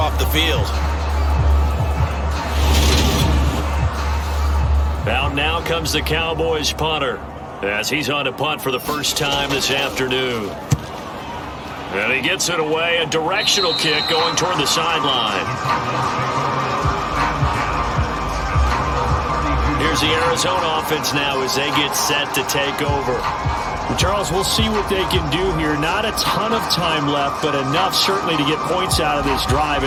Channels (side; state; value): both; identical; correlation 1.00